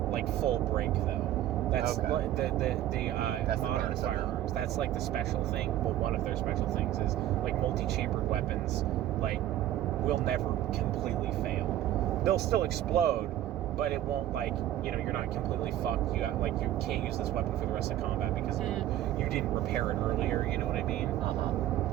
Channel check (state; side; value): quieter; left; 13.0 dB